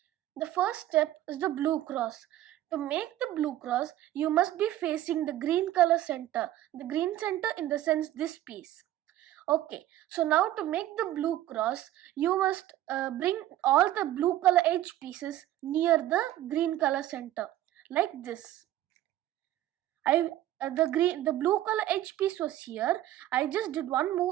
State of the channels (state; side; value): quieter; left; 13.8 dB